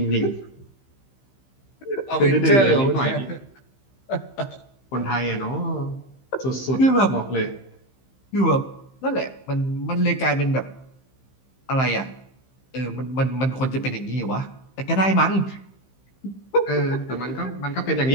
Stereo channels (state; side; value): late; right; 15 ms